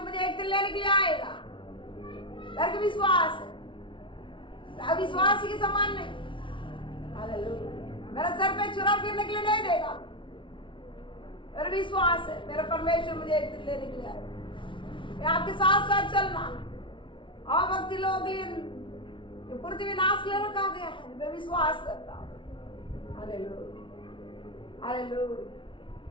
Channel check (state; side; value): late; right; 0.24 ms